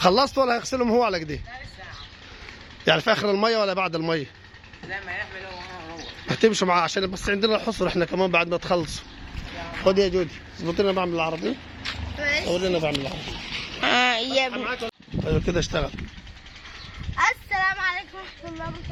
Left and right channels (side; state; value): both; identical; correlation 1.00